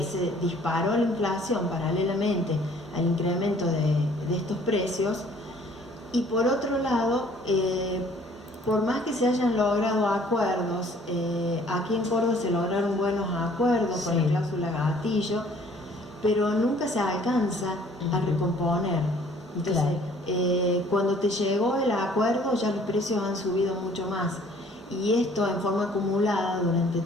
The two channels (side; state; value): both; normal; correlation 0.56